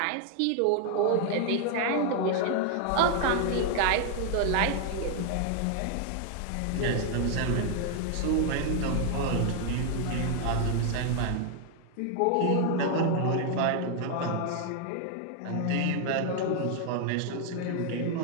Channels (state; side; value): different; both; correlation 0.00